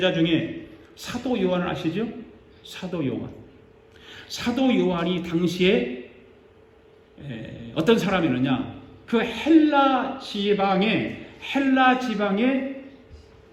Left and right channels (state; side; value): identical; both; correlation 1.00